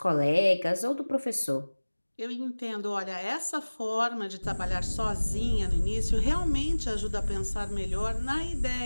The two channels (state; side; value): inverted; both; correlation -1.00